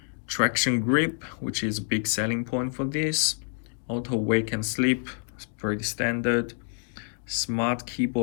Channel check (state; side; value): silent; right; 59 dB below the other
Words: traction grip, which is a big selling point for this. Auto wake and sleep, it's pretty standard. Smart